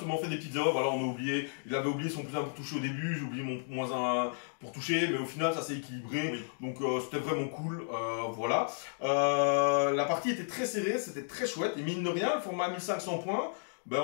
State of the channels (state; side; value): silent; right; digital silence